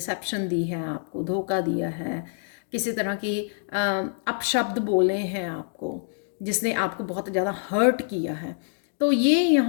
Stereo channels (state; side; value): silent; right; digital silence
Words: दी है आपको, धोखा दिया है, किसी तरह की अपशब्द बोले हैं आपको, जिसने आपको बहुत ज़्यादा हर्ट किया है, तो ये